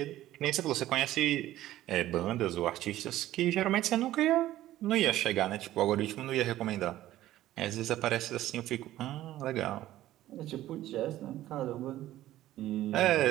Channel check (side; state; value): left; quieter; 14.4 dB